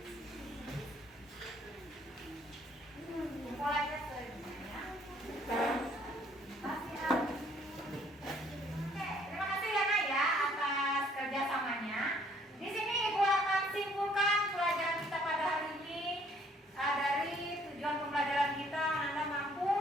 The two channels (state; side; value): normal; both; correlation 0.62